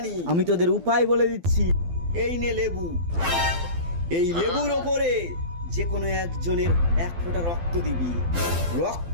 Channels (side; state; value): left; late; 12 ms